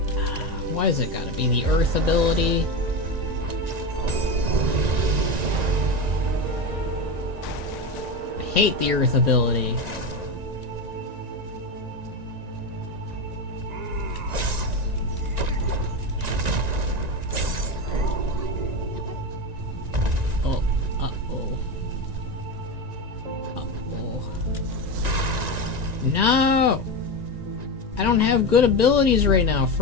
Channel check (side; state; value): left; late; 1.9 ms